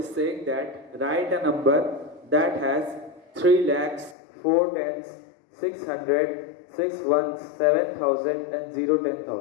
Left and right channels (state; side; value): drops out; right; at 4.2 s